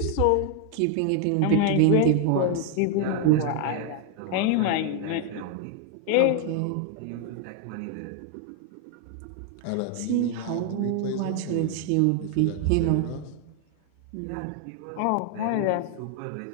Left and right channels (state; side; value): different; both; correlation 0.01